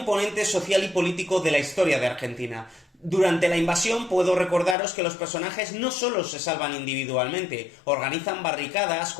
social y político de la historia de Argentina. Durante la invasión puedo recordaros que los personajes no solo se salvan individualmente, organizan barricadas,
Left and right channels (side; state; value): right; drops out; at 4.8 s